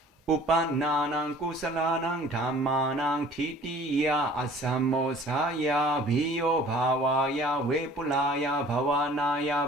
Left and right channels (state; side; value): normal; both; correlation 0.49